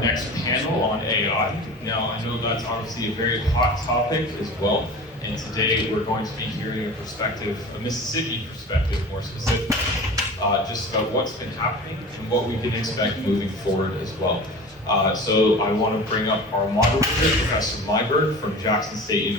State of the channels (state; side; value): normal; both; correlation 0.36